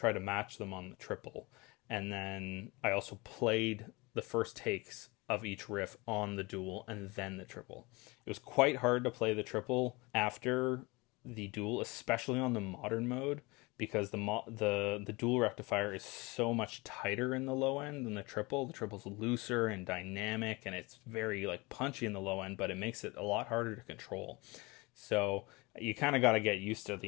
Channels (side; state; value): right; quieter; 25.0 dB